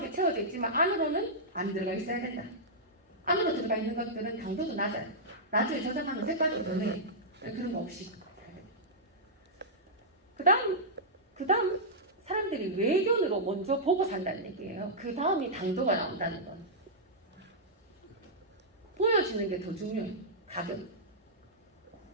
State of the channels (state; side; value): normal; both; correlation -0.12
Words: 채워져 있지만 안으로는 안 들어가 있어야 된다. 안으로 들어가 있는 것들은 당도도 낮아요. 나중에 저장하면 색깔도 변해요. 그런 거 없이. 그 다음 사람들이 외견으로 먼저 보고 산다는 얘기예요. 그 다음이 당도가 나온다는 건. 보여지는 게 더 중요해요. 가격.